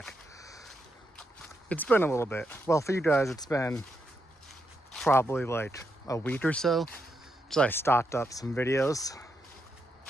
It's been a little bit. Well, for you guys, it's been probably like a week or so. So I stocked up some videos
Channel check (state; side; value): normal; both; correlation 0.82